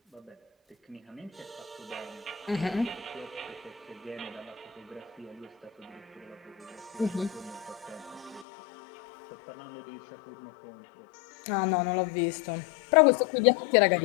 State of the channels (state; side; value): drops out; right; at 8.5 s